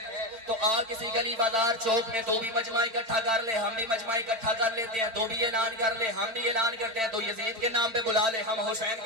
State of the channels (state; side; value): late; left; 4.5 ms